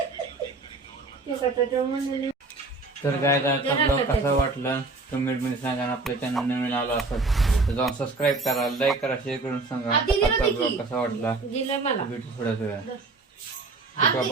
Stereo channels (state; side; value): quieter; left; 3.5 dB